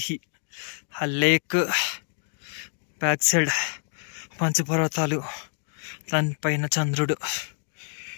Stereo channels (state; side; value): silent; right; 60 dB below the other